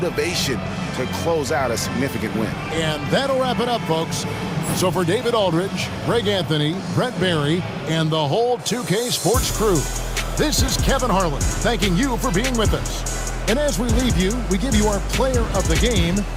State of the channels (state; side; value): identical; both; correlation 1.00